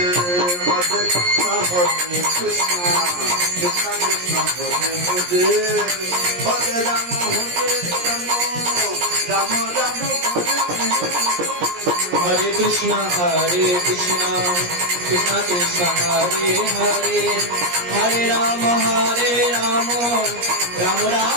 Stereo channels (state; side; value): late; left; 17 ms